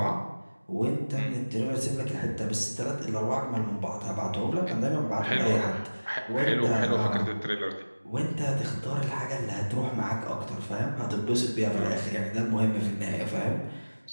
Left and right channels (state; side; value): inverted; both; correlation -1.00